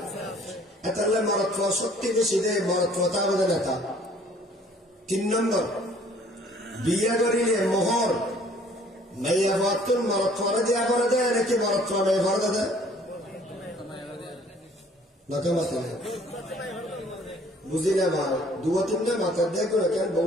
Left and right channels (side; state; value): both; normal; correlation 0.56